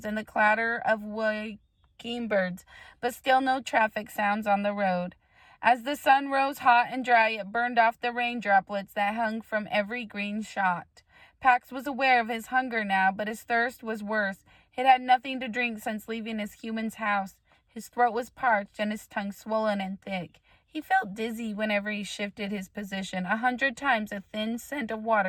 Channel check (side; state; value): both; identical; correlation 1.00